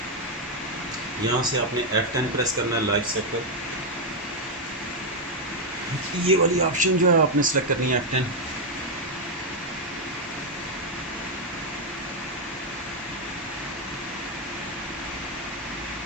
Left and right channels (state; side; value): normal; both; correlation 0.02